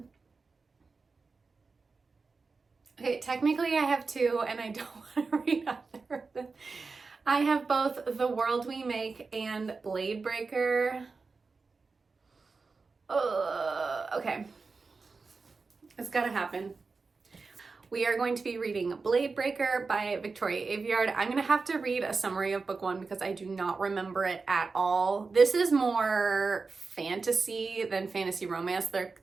Okay, technically I have 2 and I don't want to read either of them. I have both The World We Make and Blade Breaker. Okay. It's gotta happen. We are going to be reading Blade Breaker by Victoria Aveyard. I'm gonna have to read a summary of book 1 because I do not remember it at all. This is more fantasy than fantasy romance.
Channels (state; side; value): quieter; left; 4.3 dB